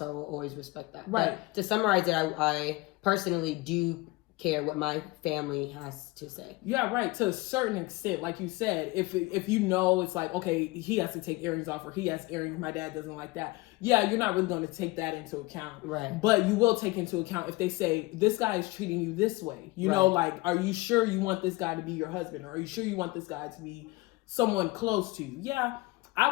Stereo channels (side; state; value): right; quieter; 22.3 dB